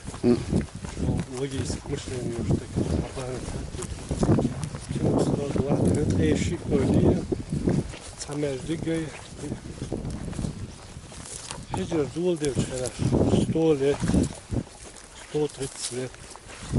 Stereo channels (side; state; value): both; identical; correlation 1.00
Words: وجيس مشلين يشتك عبارة كم صار واحد أي شيء كرديه تعمل دقي هجر دول دير شرف 100 лет 130 лет